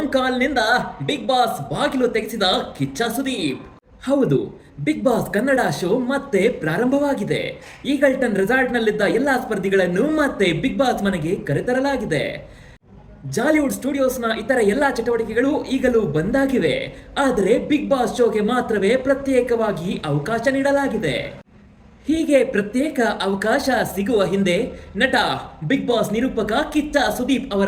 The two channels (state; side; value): identical; both; correlation 1.00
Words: ಕಾಲ್ನಿಂದ big boss ಬಾಗಿಲು ತೆಗೆಸಿದ ಕಿಚ್ಚ ಸುದೀಪ್. ಹೌದು, ಬಿಗ್ ಬಾಸ್ ಕನ್ನಡ ಶೋ ಮತ್ತೆ ಪ್ರಾರಂಭವಾಗಿದೆ. ಈಗಲ್ಟನ್ ರೆಸಾರ್ಟ್ನಲ್ಲಿದ್ದ ಎಲ್ಲಾ ಸ್ಪರ್ಧಿಗಳನ್ನು ಮತ್ತೆ ಬಿಗ್ ಬಾಸ್ ಮನೆಗೆ ಕರೆತರಲಾಗಿದೆ. ಜಾಲಿವುಡ್ ಸ್ಟುಡಿಯೋಸ್ನ ಇತರ ಎಲ್ಲಾ ಚಟುವಟಿಕೆಗಳು ಈಗಲೂ ಬಂದಾಗಿವೆ. ಆದರೆ ಬಿಗ್ ಬಾಸ್ ಶೋಗೆ ಮಾತ್ರವೇ ಪ್ರತ್ಯೇಕವಾಗಿ ಅವಕಾಶ ನೀಡಲಾಗಿದೆ. ಹೀಗೆ ಪ್ರತ್ಯೇಕ ಅವಕಾಶ ಸಿಗುವ ಹಿಂದೆ ನಟ ಬಿಗ್ ಬಾಸ್ ನಿರೂಪಕ ಕಿಚ್ಚ ಸುದೀಪ್